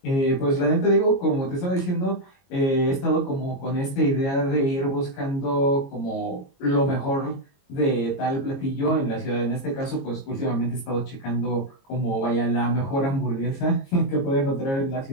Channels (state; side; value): late; right; 22 ms